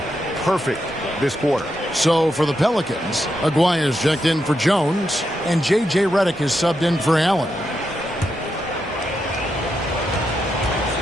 Perfect this quarter. So for the Pelicans, Aguirre's checked in for Jones, and J.J. Redick is subbed in for Allen.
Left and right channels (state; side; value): normal; both; correlation 0.84